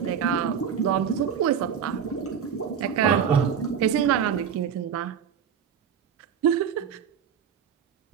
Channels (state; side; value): quieter; left; 7.8 dB